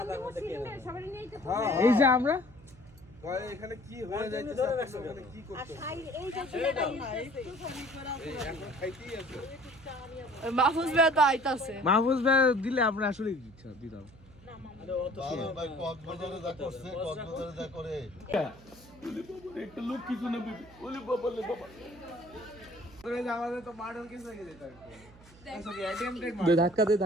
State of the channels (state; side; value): noise; right; hum, 23 dB below the sound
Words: এই যে আমরা এখানে কি হয়ে যাইতেছে, কি করতে মাহফুজ ভাই তো আইতাছে। মাহফুজ ভাই দিলে আমরা আসলে দিতাম। একটা লোক কিছু না বলে বাবা আমাদের তো মার্ডার কেস হয়ে যেত। ধাক্কা দে